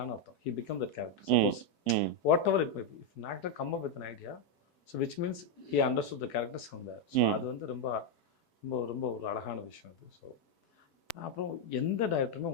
அர்த்தம். He become that character. Suppose hmm whatever it may be, if an actor come up with an idea, so which means he understood the characters from there. So அது வந்து ரொம்ப ரொம்ப ரொம்ப ஒரு அழகான விஷயம் அது. ஸோ அப்புறம் எந்த டைரக்டருமே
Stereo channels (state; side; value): late; right; 4.6 ms